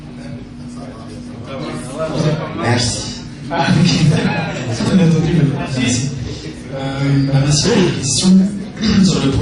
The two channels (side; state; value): both; identical; correlation 1.00